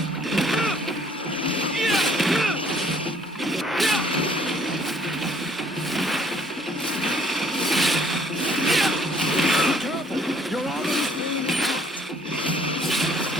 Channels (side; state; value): both; normal; correlation 0.61